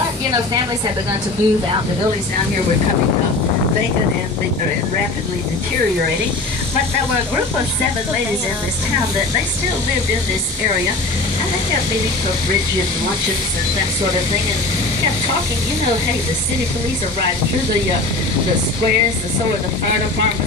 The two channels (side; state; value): right; quieter; 3.2 dB